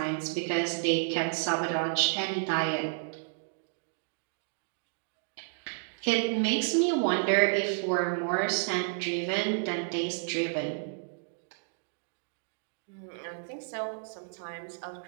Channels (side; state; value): left; silent; digital silence